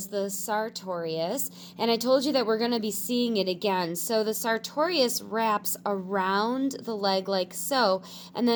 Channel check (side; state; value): both; identical; correlation 1.00